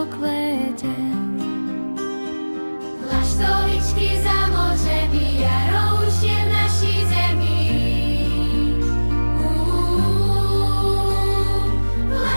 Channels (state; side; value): inverted; both; correlation -1.00